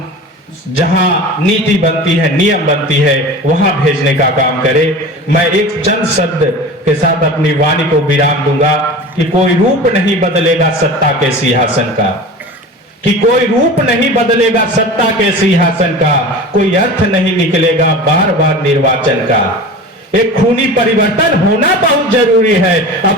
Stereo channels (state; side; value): normal; both; correlation 0.34